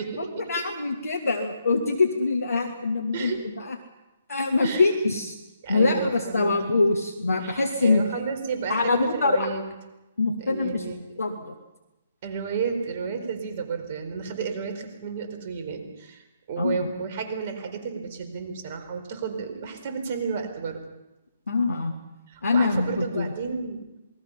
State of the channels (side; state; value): both; inverted; correlation -0.77